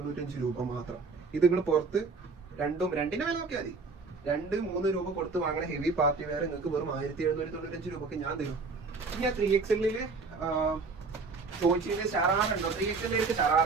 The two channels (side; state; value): left; quieter; 4.2 dB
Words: രൂപ മാത്രം. ഇത് നിങ്ങൾ പുറത്ത് രണ്ടിന്റെ വില നോക്കിയാൽ മതി. 2-3 രൂപ കൊടുത്ത് വാങ്ങണ ഹെവി പാർട്ടി വെയർ നിങ്ങൾക്ക് വെറും 1795 രൂപക്ക് ഞാൻ തരും. ഇനി ആ 3XL ചോദിച്ചതിന് ഷറാറുണ്ടോ? 3XL